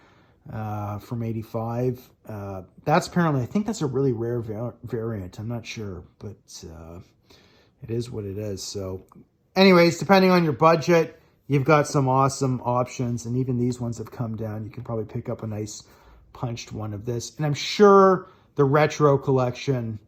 from 85. That's apparently, I think that's a really rare variant. I'm not sure, but it is what it is. So anyways, depending on your budget, you've got some awesome options, and even these ones have come down. You can probably pick up a nice punched one of this. And I'm sure the retro collection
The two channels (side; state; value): both; identical; correlation 1.00